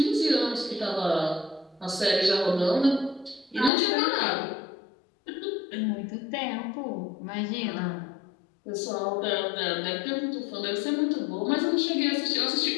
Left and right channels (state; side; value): drops out; right; at 3.7 s